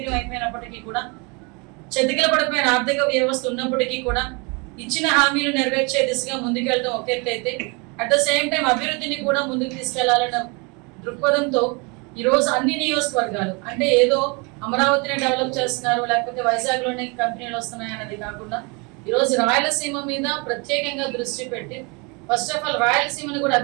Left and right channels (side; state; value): left; quieter; 30.6 dB